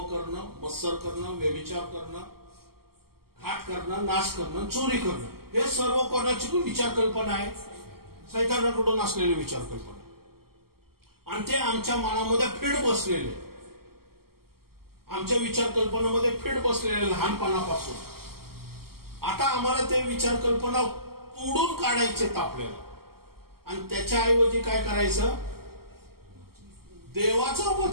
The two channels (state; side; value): late; left; 0.94 ms